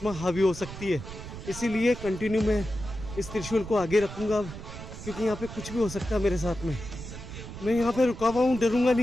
हावी हो सकती है। इसीलिए कंटिन्यू मैं इस त्रिशूल को आगे रखूंगा अब, क्योंकि यहाँ पे कुछ भी हो सकता है मेरे साथ में। मैं यहाँ पे रुका हुआ हूँ, डरूंगा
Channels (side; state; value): right; noise; rumble, 11 dB below the sound